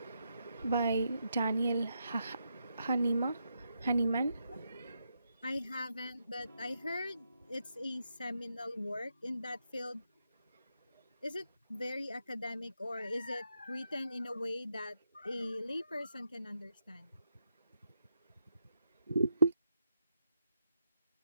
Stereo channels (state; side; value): inverted; both; correlation -0.82